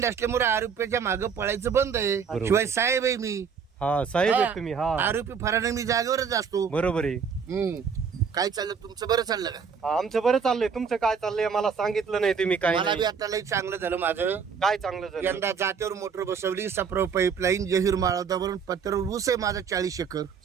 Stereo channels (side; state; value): left; quieter; 6.3 dB